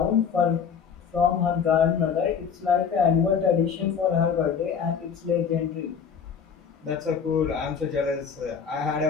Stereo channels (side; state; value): right; quieter; 6.8 dB